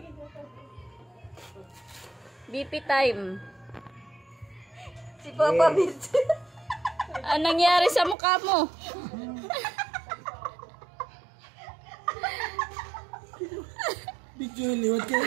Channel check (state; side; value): drops out; left; at 8.2 s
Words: BP time. Si Papa Bit. Anong nangyari sa mukha mo? Picture liwat kayo